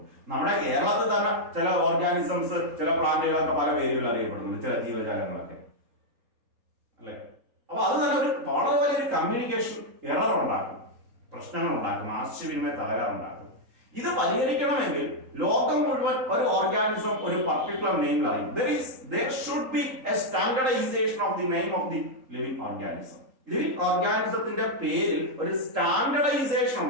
നമ്മുടെ കേരളത്തിൽ തന്നെ ചില ഓർഗാനിസംസ്, ചില പ്ലാന്റുകളൊക്കെ പല പേരുകൾ അറിയപ്പെടുന്നു, ചില ജീവജാലങ്ങളൊക്കെ, അല്ലെ? അപ്പൊ അത് തന്നെ ഒരു വളരെ വലിയൊരു കമ്മ്യൂണിക്കേഷൻ എറർ ഉണ്ടാക്കും, പ്രശ്നങ്ങൾ ഉണ്ടാക്കും, ആശയവിനിമയ തകരാറുണ്ടാക്കും. ഇത് പരിഹരിക്കണമെങ്കിൽ ലോകം മുഴുവൻ ഒരു ഓർഗാനിസം ഒരു പർട്ടിക്കുലർ നെയിമിൽ അറിയും. There should be a standardization of the name of the living organism. Living ഓർഗാനിസത്തിന്റെ പേരിൽ ഒരു സ്റ്റാൻഡർഡൈസേഷൻ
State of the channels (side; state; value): left; late; 3.8 ms